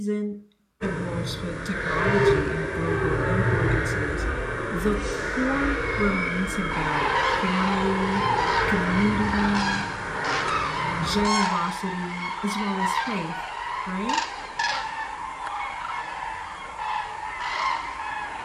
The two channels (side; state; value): both; identical; correlation 1.00